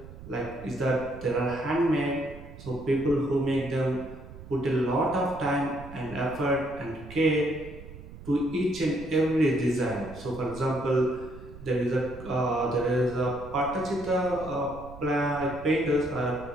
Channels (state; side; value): noise; right; rumble, 15 dB below the sound